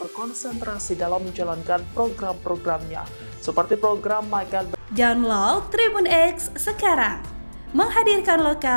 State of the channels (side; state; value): both; inverted; correlation -1.00